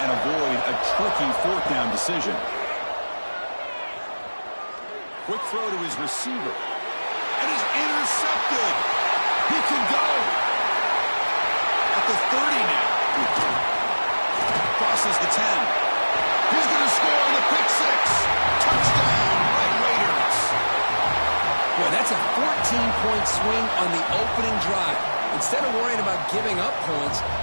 and avoid a tricky 4th down decision? Quick throw to his receiver. And he's intercepted. He can go. At the 30 now. Crosses the 10. He's going to score on the pick 6. Touchdown, Red Raiders. Boy, that's a 14-point swing on the opening drive. Instead of worrying about giving up points,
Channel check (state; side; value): inverted; both; correlation -1.00